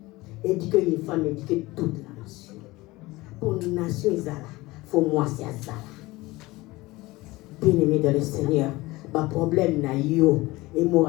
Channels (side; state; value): right; quieter; 20.5 dB